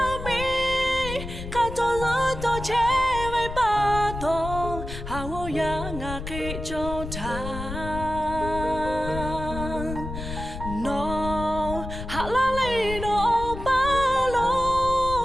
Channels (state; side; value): noise; left; rumble, 8 dB below the sound